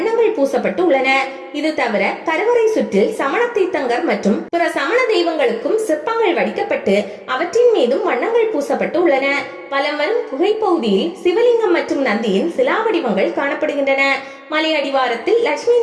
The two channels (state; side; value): identical; both; correlation 1.00